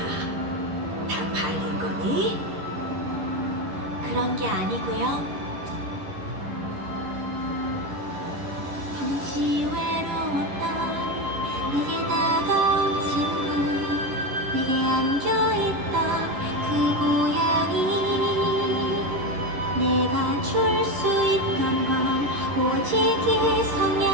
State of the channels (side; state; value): left; late; 11 ms